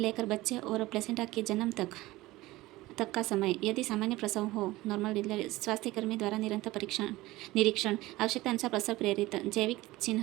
बच्चे और प्लेसेंटा के जन्म तक का समय। यदि सामान्य प्रसव हो, नॉर्मल डिलीवरी, स्वास्थ्यकर्मी द्वारा निरंतर निरीक्षण, आवश्यकता अनुसार प्रसव प्रेरित जैविक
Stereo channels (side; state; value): left; quieter; 18.6 dB